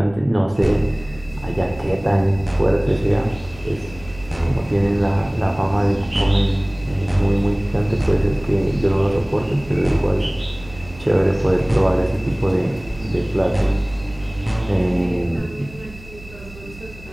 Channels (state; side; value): noise; right; hum, 19 dB below the sound